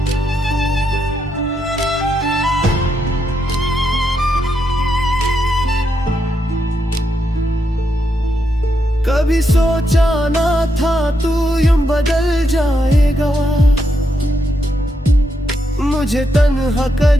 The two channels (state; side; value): normal; both; correlation 0.81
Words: कभी सोचा ना था तू यूं बदल जाएगा, मुझे तन्हा